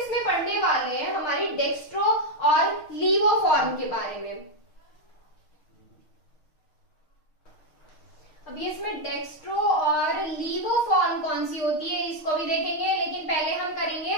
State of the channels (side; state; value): right; late; 6.4 ms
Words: पढ़ने वाले हैं हमारी डेक्स्ट्रो और लीवो फॉर्म के बारे में। अब इसमें डेक्स्ट्रो और लीवो फॉर्म कौन सी होती है, इसको भी देखेंगे, लेकिन पहले हम करेंगे